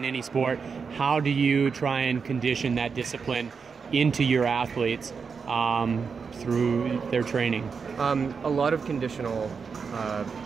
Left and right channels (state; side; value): quieter; left; 5.6 dB